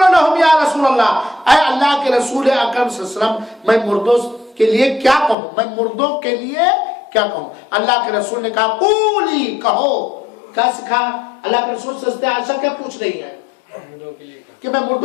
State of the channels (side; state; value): right; drops out; at 5.4 s